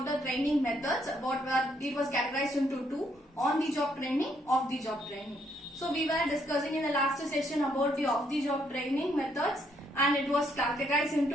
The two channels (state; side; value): normal; both; correlation 0.72